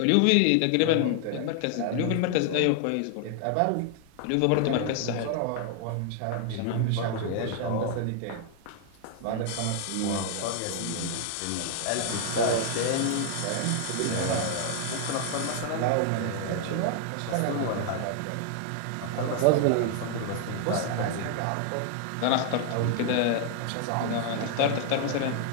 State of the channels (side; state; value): both; different; correlation 0.00